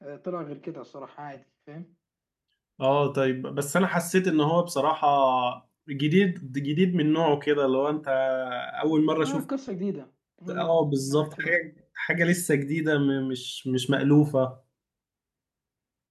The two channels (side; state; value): both; identical; correlation 1.00